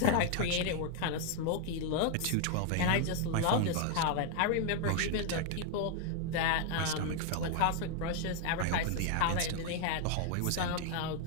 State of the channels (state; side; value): different; both; correlation 0.01